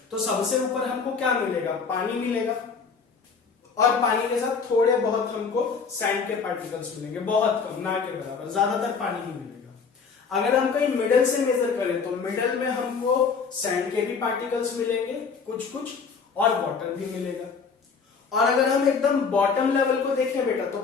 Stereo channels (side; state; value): right; quieter; 5.5 dB